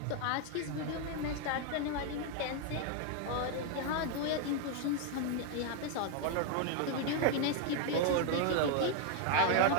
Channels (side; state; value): both; different; correlation 0.00